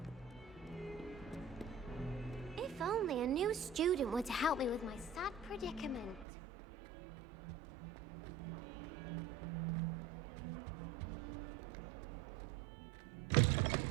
If only a new student were to help me with my sad predicament.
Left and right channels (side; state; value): left; drops out; at 6.2 s